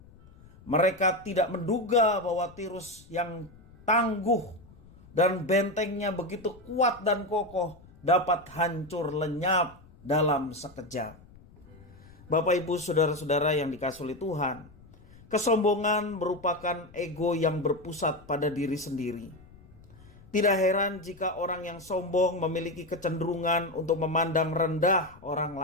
Mereka tidak menduga bahwa Tirus yang tangguh dan bentengnya begitu kuat dan kokoh dapat hancur lenyap dalam sekejap. Bapak, Ibu, saudara-saudara yang dikasihi Tuhan, kesombongan merupakan ego yang berpusat pada diri sendiri. Tidak heran jika orang yang sombong memiliki kecenderungan untuk memandang rendah orang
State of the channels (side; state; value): left; noise; rumble, 23 dB below the sound